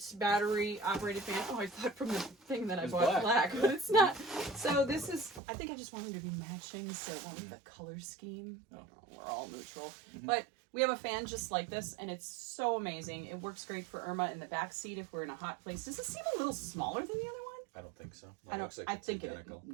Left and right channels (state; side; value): drops out; left; at 5.4 s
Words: battery operated fan. Oh, I thought from the thing that I bought black, but it's not. So this is, I think I just wanted to be matching, so it won't be the color scheme. Oh. We're all neutral. Mm-hmm. But we have a fan just like this, and it's so amazing. It works great for Irma in the back seat if we're in a hot place. Does it seem a little smaller than the other one? I don't think so. I think identical.